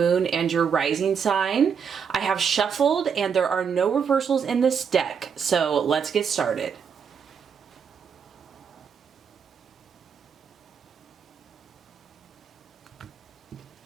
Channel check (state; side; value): quieter; left; 6.8 dB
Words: and your rising sign. I have shuffled and there are no reversals in this deck, so let's get started.